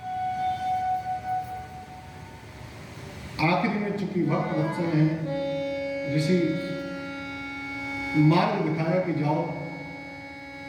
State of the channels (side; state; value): both; identical; correlation 1.00